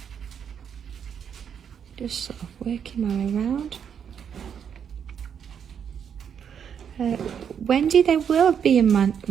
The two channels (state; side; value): quieter; left; 7.8 dB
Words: Just sort of working my way around. Wendy, they will be in